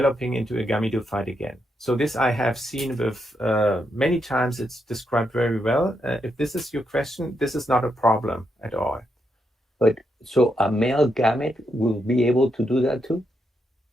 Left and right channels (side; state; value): both; normal; correlation 0.81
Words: into a gametophyte again. So this I have seen with many times. It's described very well. If this is your question, this is not a problem at all. But so a male gamete will be able to do that too?